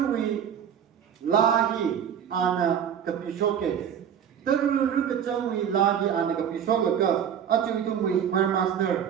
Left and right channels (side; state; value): left; quieter; 8.7 dB